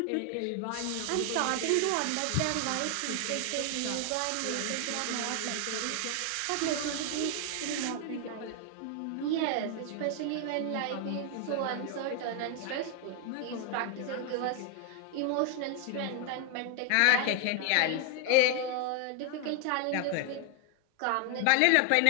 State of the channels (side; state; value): both; different; correlation 0.00